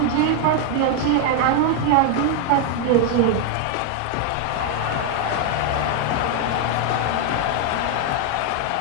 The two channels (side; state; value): both; different; correlation 0.01